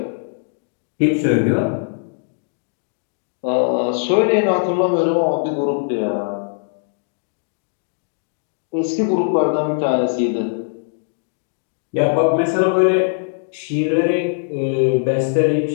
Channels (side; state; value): right; silent; digital silence